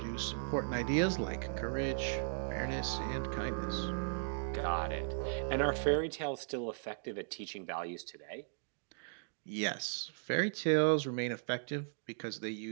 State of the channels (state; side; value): silent; left; digital silence